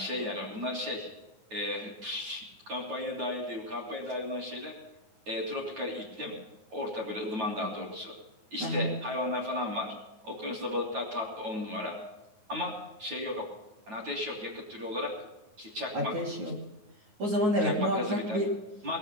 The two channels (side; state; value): left; late; 9.2 ms